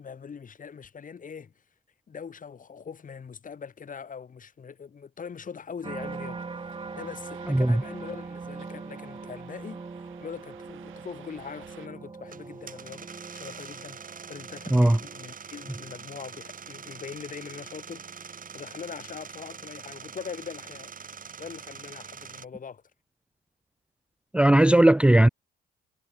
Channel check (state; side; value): normal; both; correlation 0.92